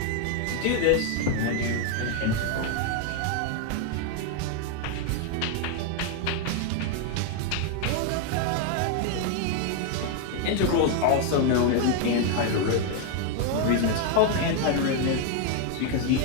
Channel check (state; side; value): different; both; correlation 0.01